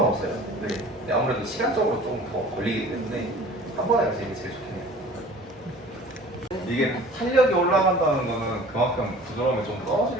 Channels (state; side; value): normal; both; correlation 0.45